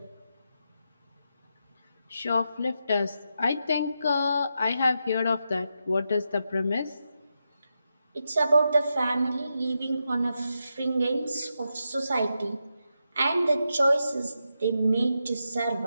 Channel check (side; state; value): both; inverted; correlation -0.86